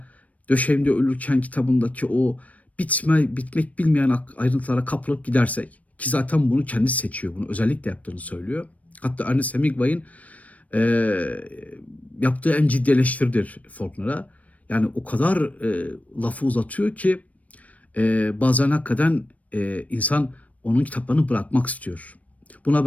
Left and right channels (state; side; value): late; right; 0.068 ms